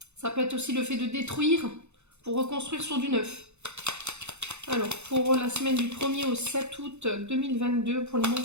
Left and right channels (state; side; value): late; left; 0.81 ms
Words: Ça peut être aussi le fait de détruire pour reconstruire sur du neuf. Alors, pour la semaine du 1er au 7 août 2022, pour les